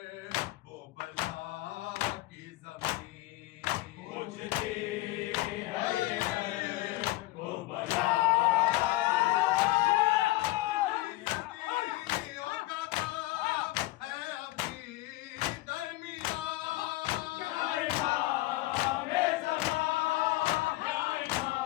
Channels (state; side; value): quieter; right; 19.2 dB